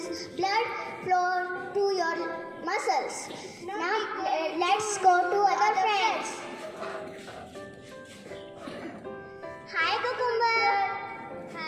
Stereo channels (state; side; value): identical; both; correlation 1.00